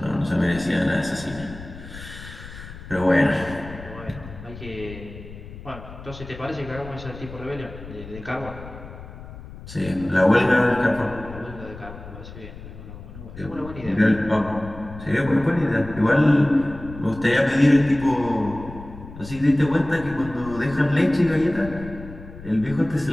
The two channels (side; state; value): left; noise; rumble, 14 dB below the sound